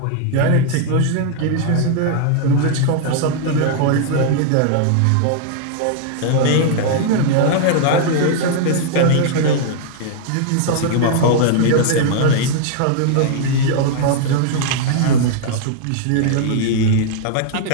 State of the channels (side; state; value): both; different; correlation 0.00